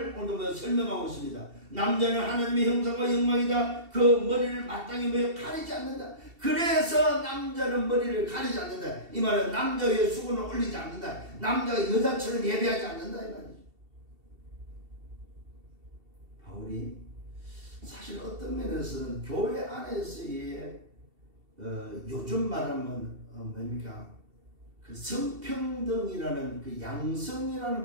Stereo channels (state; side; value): late; left; 2.7 ms